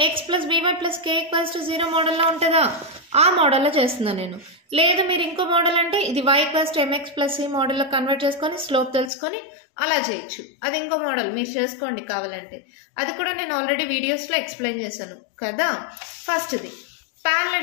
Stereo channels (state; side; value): drops out; right; at 9.1 s